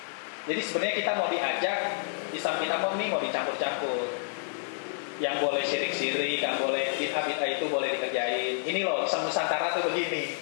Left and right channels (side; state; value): right; silent; digital silence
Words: Jadi sebenarnya kita mau diajak Islam kita mau dicampur-campur. Yang boleh syirik-syirik, yang boleh bid'ah-bid'ah itu boleh dikerjain. Ini loh, Islam Nusantara tuh begini.